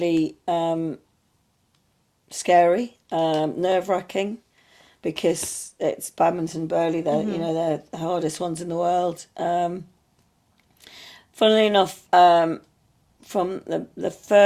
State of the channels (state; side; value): identical; both; correlation 1.00